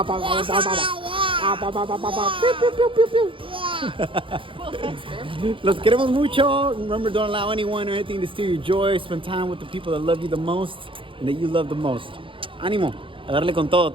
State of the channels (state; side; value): late; left; 0.25 ms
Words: Well, thanks, babe. Los queremos mucho. Remember, don't allow anyone or anything to steal your joy. Spend time with the people that love you the most and that you love the most. Ánimo, a darle con todo.